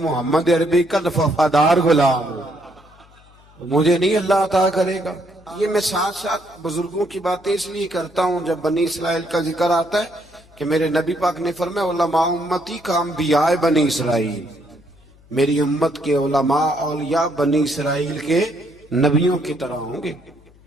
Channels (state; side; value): noise; left; hum, 27 dB below the sound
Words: عربی کا وفادار غلام ہوں، مجھے نہیں اللہ عطا کرے گا. یہ میں ساتھ ساتھ بزرگوں کی باتیں اس لیے کرتا ہوں جب بنی اسرائیل کا ذکر آتا ہے کہ میرے نبی پاک نے فرمایا علماء امتی کا انبیاء بنی اسرائیل، میری امت کے علماء اولیاء بنی اسرائیل کے نبیوں کی طرح ہوں گے.